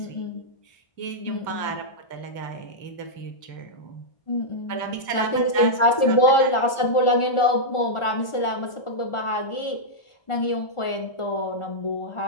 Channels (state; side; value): late; right; 1.4 ms